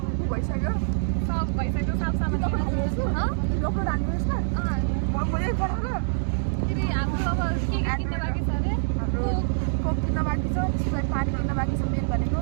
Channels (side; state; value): left; silent; digital silence